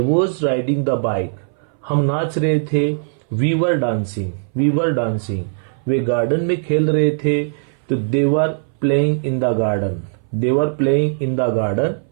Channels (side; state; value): left; silent; 61 dB below the other